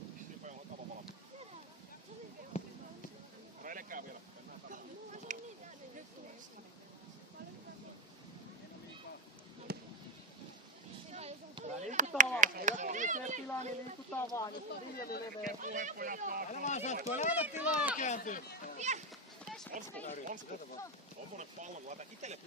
Sipe on kava valmis. Reilekää vielä. Liikutaan vaan. Jos ei tilaa, niin liikutaan vaan. Jos on viljely leveä. Älä vaan sattu, älä ota tilaa ja kääntyy. Onsko? Tommonen pallo, kun laita itelle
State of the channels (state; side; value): normal; both; correlation 0.09